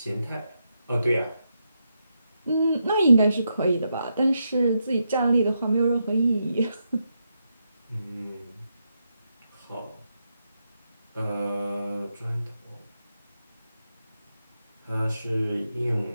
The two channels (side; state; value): both; inverted; correlation -0.84